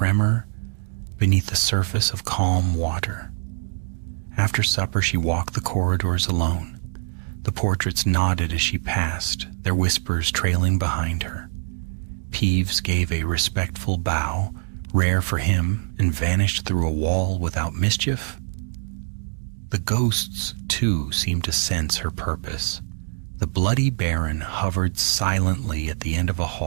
beneath the surface of calm water. After supper, she walked the corridors alone. The portraits nodded as she passed, their whispers trailing behind her. Peeves gave a respectful bow, rare for him, and vanished through a wall without mischief. The ghosts, too, seemed to sense her purpose. The Bloody Baron hovered silently at the end of a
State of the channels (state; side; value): silent; left; digital silence